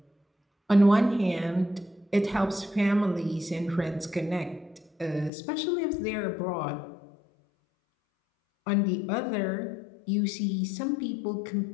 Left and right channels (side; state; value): right; drops out; at 5.3 s